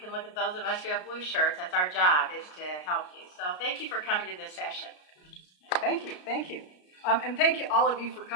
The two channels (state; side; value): late; right; 33 ms